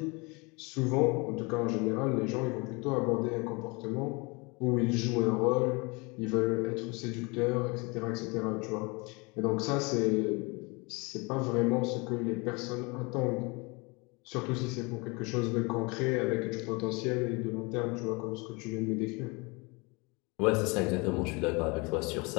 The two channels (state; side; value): quieter; right; 28.1 dB